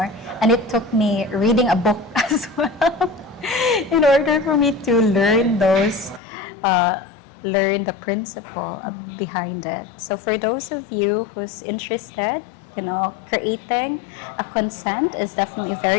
And it took me reading a book as well in order for me to learn learn the principle behind it. So for those of you who's interested, creating a consent is definitely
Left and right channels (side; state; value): right; drops out; at 6.2 s